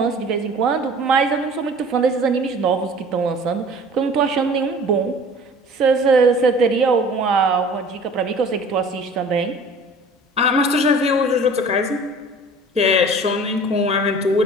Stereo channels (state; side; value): normal; both; correlation 0.45